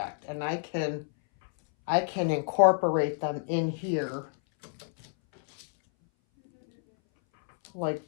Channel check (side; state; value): right; silent; 59 dB below the other